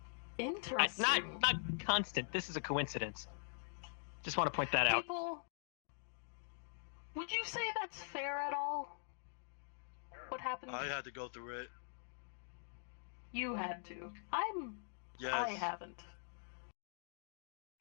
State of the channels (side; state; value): right; silent; digital silence